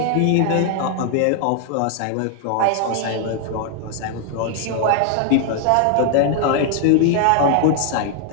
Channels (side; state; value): both; different; correlation 0.00